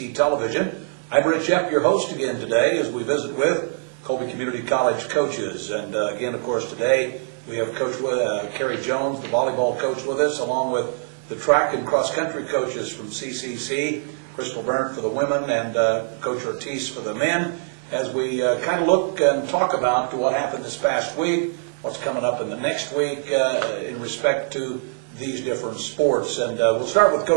Television. I'm Berndt, your host again today as we visit with Colby Community College coaches. And again, of course, today we have Coach Carey Jones, the volleyball coach, with us, along with the track and cross-country coaches from CCC, Berndt for the women and Coach Ortiz for the men, as we kind of look and talk about what happened this past week, what's coming up in the next week in respect to these different sports. And we'll start with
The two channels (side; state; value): left; silent; digital silence